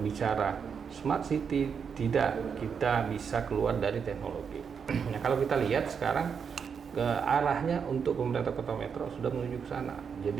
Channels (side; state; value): left; quieter; 6.6 dB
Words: Smart City, tidak kita bisa keluar dari teknologi. Nah kalau kita lihat sekarang ke arahnya untuk pemerintah Kota Metro sudah menuju ke sana.